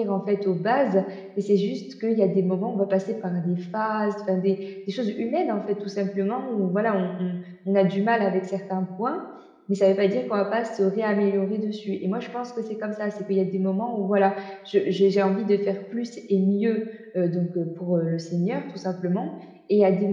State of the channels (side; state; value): both; identical; correlation 1.00